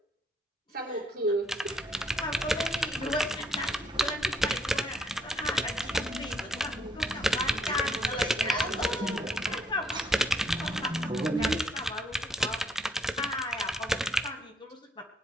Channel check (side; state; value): both; normal; correlation 0.69